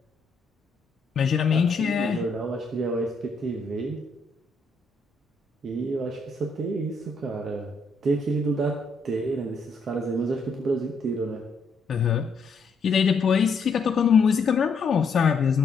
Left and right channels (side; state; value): right; quieter; 3.6 dB